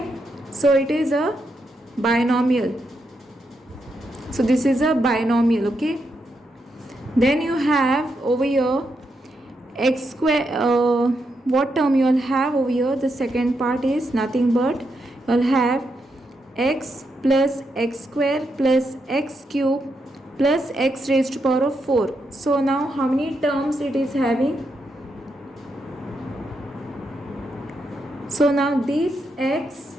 so it is a binomial. So this is a binomial. Okay, then you have over here x square. What term you will have over here? The second part is nothing but you will have x plus x square plus x cube plus x raised to power of 4. So now how many terms it is having? So now this x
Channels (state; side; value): normal; both; correlation 0.82